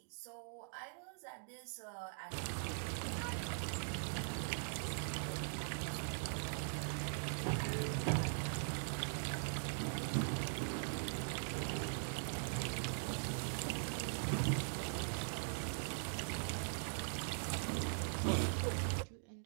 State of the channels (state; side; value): silent; left; digital silence